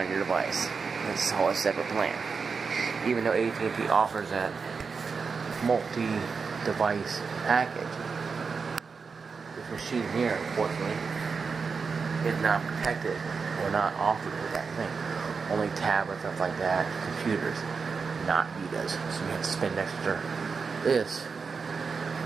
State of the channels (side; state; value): left; quieter; 5.2 dB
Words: your device. It's all a separate plan. Even though AT&T offers that multi-device package, this machine here, unfortunately, is not protected or not offered with that thing. Only tablets, stuff like that, computers, not Vitas. So you have to spend extra this